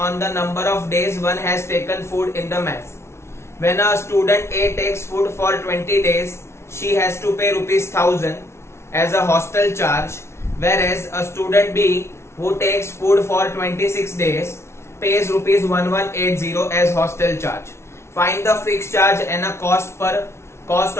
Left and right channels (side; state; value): right; late; 0.13 ms